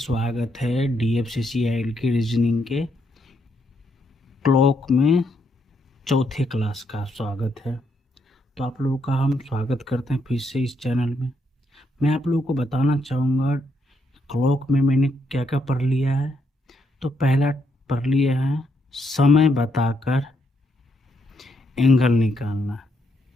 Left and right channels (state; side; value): normal; both; correlation 0.76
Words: है DFCCIL की रीजनिंग के क्लॉक में चौथे क्लास का स्वागत है। तो आप लोगों का हम स्वागत करते हैं फिर से इस चैनल में। मैं आप लोगों को बताना चाहूँगा क्लॉक में मैंने क्या क्या पढ़ लिया है। तो पहला पढ़ लिया है समय बताकर एंगल निकालना,